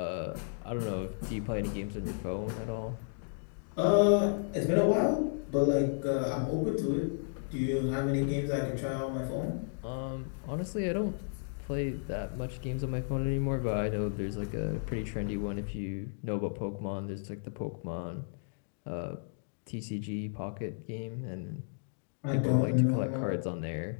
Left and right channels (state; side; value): silent; right; digital silence